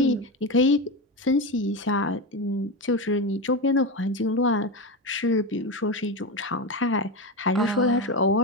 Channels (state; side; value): normal; both; correlation 0.17